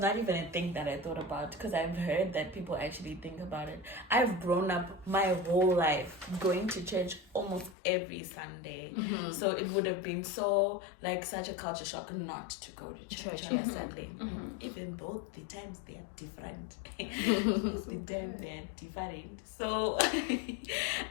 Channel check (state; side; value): drops out; right; at 7.8 s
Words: even a thing that I thought about, because I've heard that people actually think about it. I've grown up my whole life going to church almost every Sunday. So it would have been such a culture shock not to go to church on a Sunday. Even though the times they are different. So